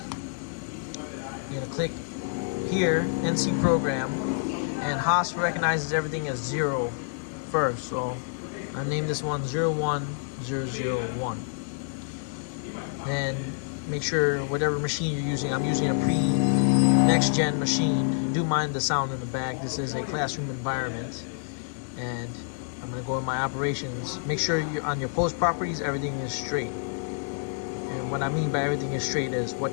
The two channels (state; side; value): silent; right; 58 dB below the other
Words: You're gonna click here, NC program, and haas recognizes everything as 0 first. So I named this one 01001. Then make sure whatever machine you're using, I'm using a next gen machine. Do mind the sound in the back. This is a classroom environment, and I'm going to go in my operations. Make sure you're on your post properties, everything is straight. And what I mean by everything is straight is